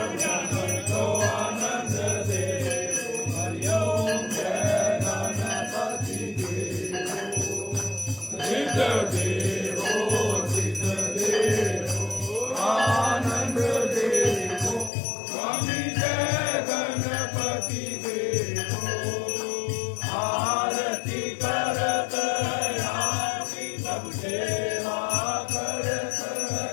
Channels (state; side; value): drops out; right; at 14.9 s